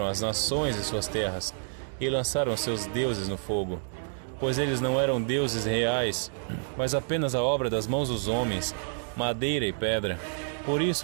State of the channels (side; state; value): left; silent; digital silence